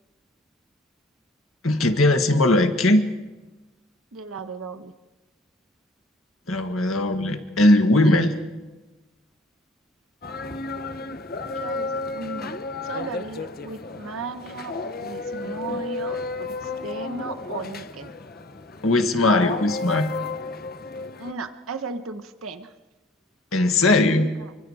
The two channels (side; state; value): both; normal; correlation 0.53